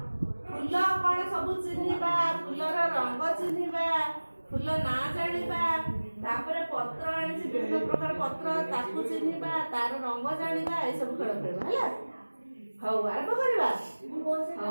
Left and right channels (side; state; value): both; inverted; correlation -1.00